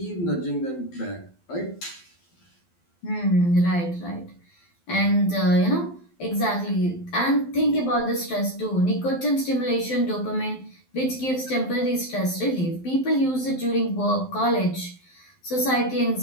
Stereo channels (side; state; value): right; late; 12 ms